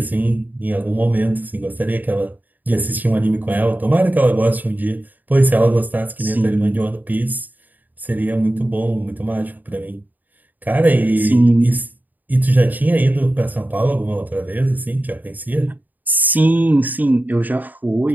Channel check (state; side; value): late; left; 0.084 ms